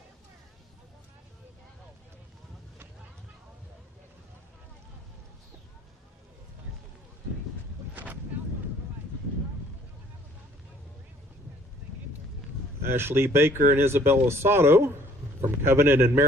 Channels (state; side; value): normal; both; correlation 0.58